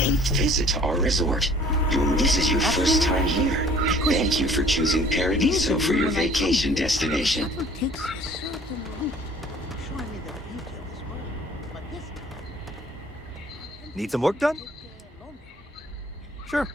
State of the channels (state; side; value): normal; both; correlation 0.53